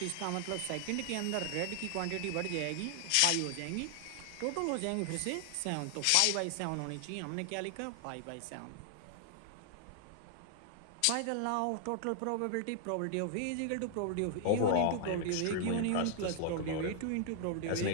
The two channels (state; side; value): different; both; correlation 0.00